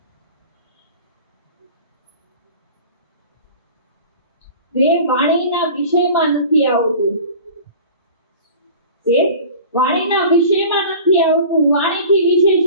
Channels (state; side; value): inverted; both; correlation -0.40